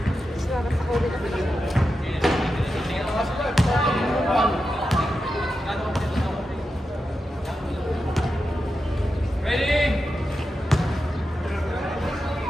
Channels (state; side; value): normal; both; correlation 0.89